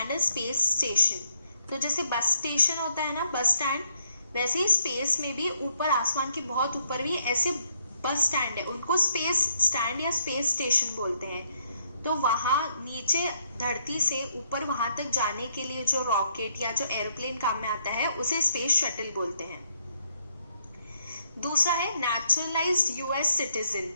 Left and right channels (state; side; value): inverted; both; correlation -0.72